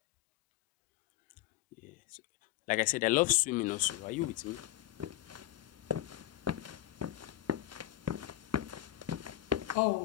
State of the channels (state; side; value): quieter; right; 14.4 dB